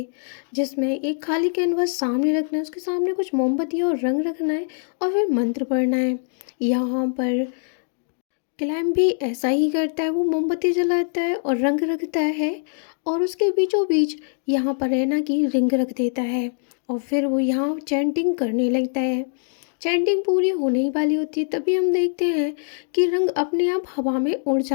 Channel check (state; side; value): silent; right; digital silence